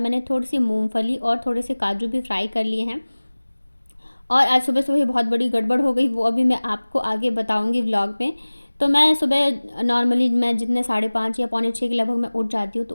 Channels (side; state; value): both; inverted; correlation -1.00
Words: थोड़ी सी मूंगफली और थोड़े से काजू भी फ्राई कर लिए हैं। और आज सुबह सुबह बहुत बड़ी गड़बड़ हो गई, वो अभी मैं आपको आगे बताऊंगी व्लॉग में। तो मैं सुबह नॉर्मली मैं जितने 5:30 या पौने 6 के लगभग मैं उठ जाती हूँ।